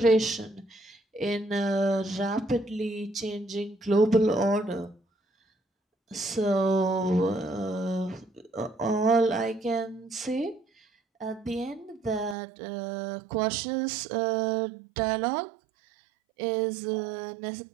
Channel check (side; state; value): left; drops out; at 12.4 s